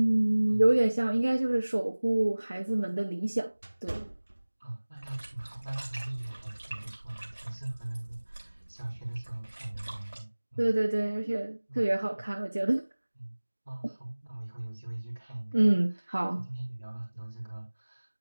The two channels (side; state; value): both; inverted; correlation -1.00